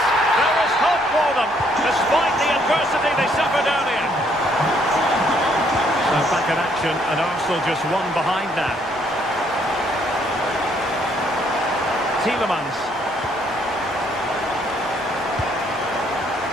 There is hope for them, despite the adversity they suffered earlier. So back in action, and Arsenal just one behind now. Tielemans.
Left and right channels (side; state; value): both; normal; correlation 0.68